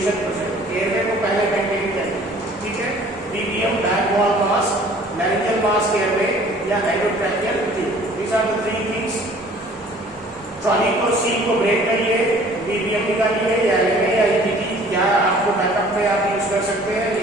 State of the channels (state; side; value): normal; both; correlation 0.52